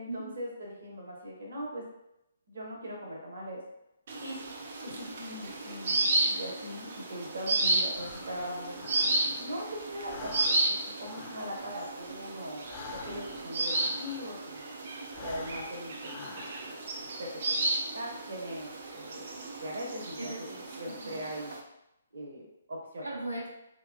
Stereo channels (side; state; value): both; inverted; correlation -0.68